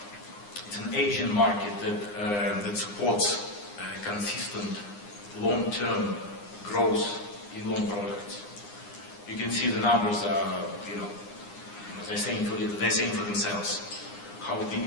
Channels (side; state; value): right; late; 9.8 ms